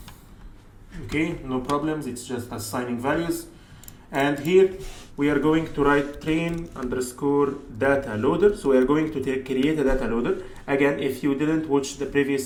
Okay, no problems, it's just assigning values. And here we are going to write train underscore data loader. So we are going to create a data loader. Again, if you didn't watch the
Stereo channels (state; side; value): identical; both; correlation 1.00